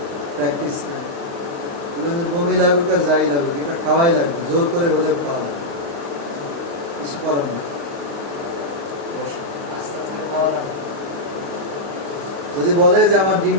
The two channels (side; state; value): left; late; 35 ms